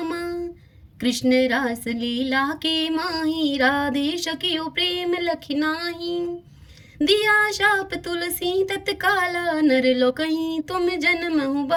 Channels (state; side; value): identical; both; correlation 1.00